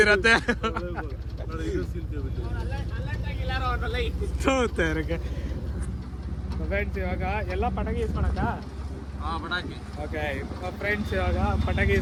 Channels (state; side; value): identical; both; correlation 1.00